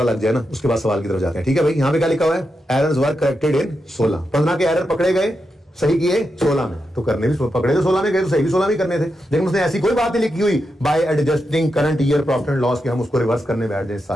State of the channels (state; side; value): normal; both; correlation 0.87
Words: लग जाए ना, उसके बाद सवाल की तरफ जाते हैं, ठीक है भाई। यहां पे क्या लिखा हुआ है, एरर्स वर करेक्टेड इन 16, 15 के एरर पकड़े गए, सही किए 16 में, तो करने भी पकड़े तो 16 में गए, तो सही भी 16 में करने थे, लेकिन उसने ऐसी कोई बात नहीं लिखी हुई bye adjusting current year profit and loss कि हम उसको रिवर्स करने बैठ जाए इस